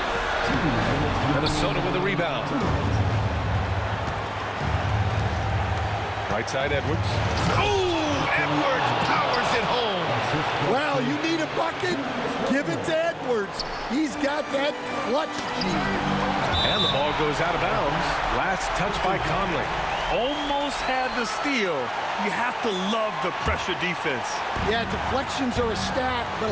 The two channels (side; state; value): both; identical; correlation 1.00